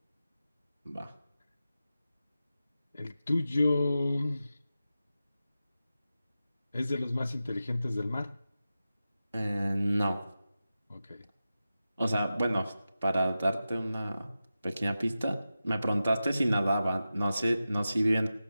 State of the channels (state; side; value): inverted; both; correlation -0.93